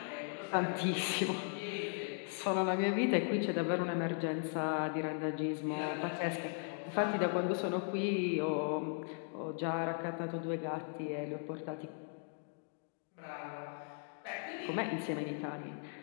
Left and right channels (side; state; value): right; silent; 53 dB below the other